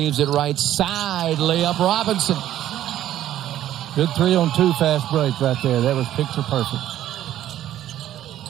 it right side, layup Robinson. Good 3-on-2 fast break right there. That was picture perfect.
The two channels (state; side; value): quieter; left; 12.4 dB